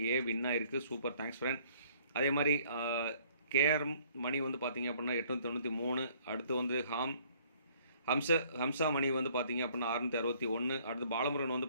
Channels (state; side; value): inverted; both; correlation -0.60